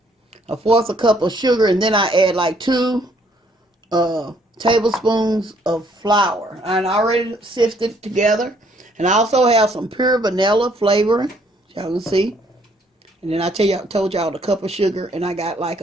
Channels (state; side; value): normal; both; correlation 0.66